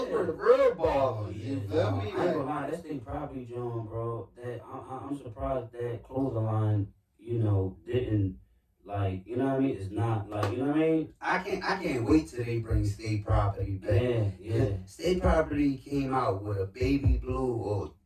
were the real ballers. You feel me? I ain't gonna lie, that's they property John, bro. That I'm surprised that clothing line, didn't like, you know what I mean? It's not like, you know what I mean? I can't wait till they bring State Property back. Yeah. State Property came out with a baby blue, or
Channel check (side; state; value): both; identical; correlation 1.00